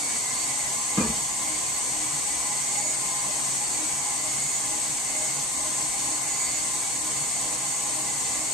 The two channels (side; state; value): both; normal; correlation 0.33